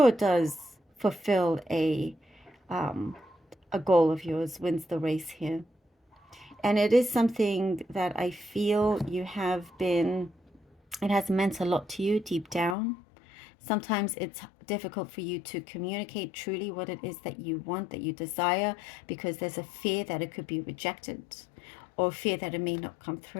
does fulfill a goal of yours, wins the race here. And it is something that I feel you have been, it has meant a lot to you deep down. Sometimes it's difficult for you to communicate truly what it is that you want, that you desire, because there's a fear that it could be rejected or fear that it may not come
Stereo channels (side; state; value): right; drops out; at 12.8 s